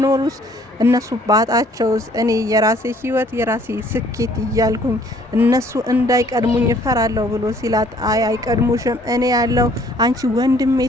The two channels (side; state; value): both; normal; correlation 0.59